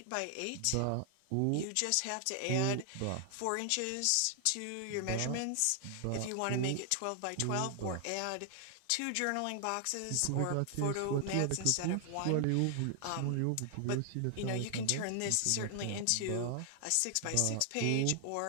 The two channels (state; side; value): different; both; correlation 0.00